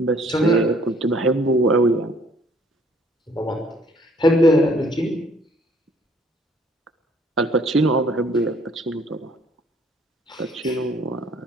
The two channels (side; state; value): both; normal; correlation 0.60